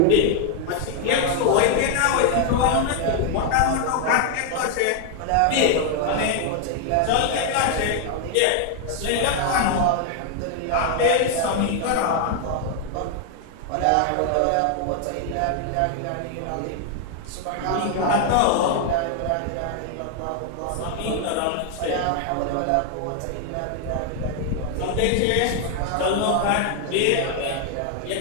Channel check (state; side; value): different; both; correlation 0.00